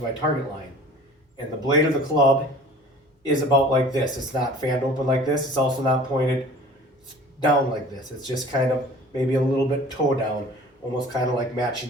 my target line. And the blade of the club is about like this. It's not fanned open like this. It's also not pointed down like this. It's just kind of maybe a little bit toe down, almost kind of like matching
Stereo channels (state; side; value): normal; both; correlation 0.45